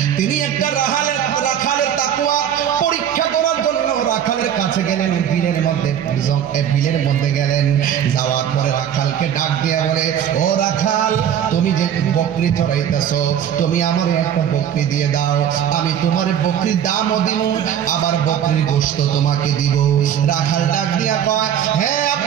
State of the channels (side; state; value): left; quieter; 9.4 dB